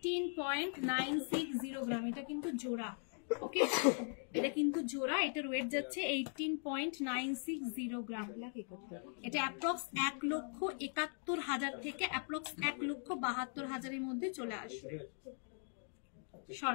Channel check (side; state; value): right; silent; 51 dB below the other